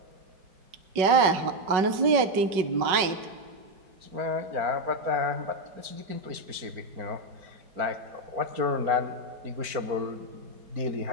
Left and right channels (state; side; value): late; left; 5.3 ms